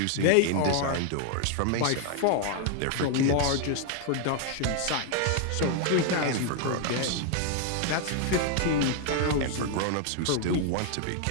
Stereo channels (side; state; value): both; different; correlation 0.00